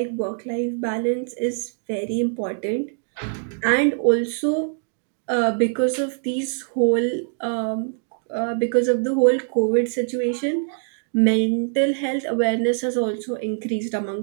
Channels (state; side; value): silent; left; digital silence